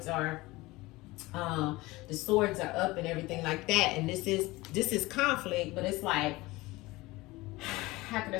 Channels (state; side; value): quieter; right; 20.7 dB